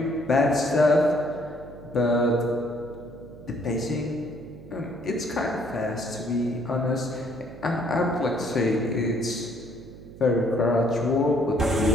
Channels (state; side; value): noise; right; hum, 17 dB below the sound